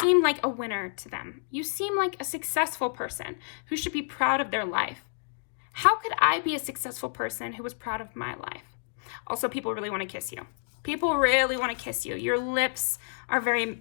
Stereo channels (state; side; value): silent; right; digital silence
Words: like a winner to them. You seem like a successful person who should be proud of their life. How could I be a successful person who was proud of my life? Also, people really want to kiss you. People really want to kiss you. Your lips are very